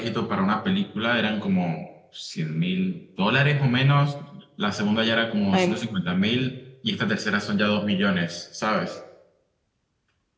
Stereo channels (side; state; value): both; identical; correlation 1.00